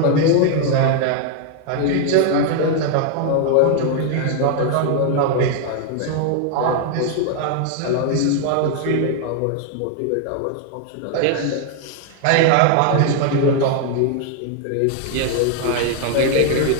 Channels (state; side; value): different; both; correlation 0.00